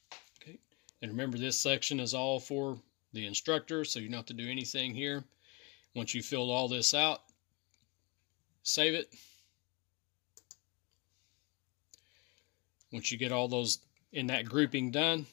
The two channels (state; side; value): quieter; right; 28.8 dB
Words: Okay, and remember this section is all for the instructor, so you don't have to do anything here. Once you filled all this out, save it. Once you get all those in that grouping done,